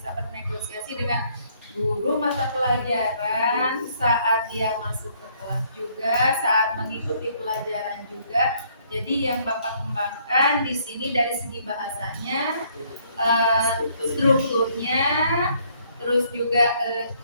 bernegosiasi dengan guru mata pelajaran saat dia masuk ke kelas juga, saat mengikuti pelajaran juga. Jadi yang Bapak kembangkan di sini dari segi bahasanya, strukturnya, terus juga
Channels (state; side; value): inverted; both; correlation -0.66